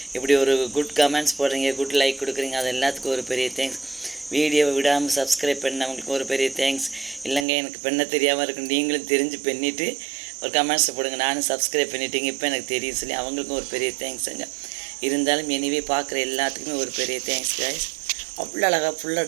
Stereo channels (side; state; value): left; drops out; at 7.5 s